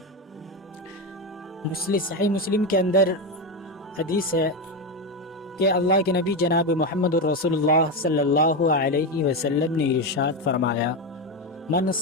صحیح مسلم کے اندر حدیث ہے کہ اللہ کے نبی جناب محمد الرسول اللہ صلی اللہ علیہ وسلم نے ارشاد فرمایا، من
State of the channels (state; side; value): normal; both; correlation 0.13